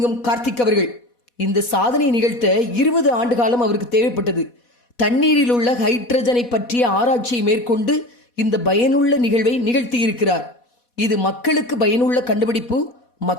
கார்த்திக் அவர்கள். இந்த சாதனை நிகழ்த்த 20 ஆண்டு காலம் அவருக்கு தேவைப்பட்டது. தண்ணீரில் உள்ள ஹைட்ரஜனை பற்றிய ஆராய்ச்சியை மேற்கொண்டு இந்த பயனுள்ள நிகழ்வை நிகழ்த்தியிருக்கிறார். இது மக்களுக்கு பயனுள்ள கண்டுபிடிப்பு,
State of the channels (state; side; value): late; right; 4.1 ms